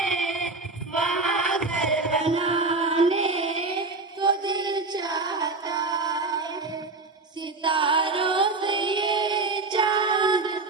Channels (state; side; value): quieter; left; 3.6 dB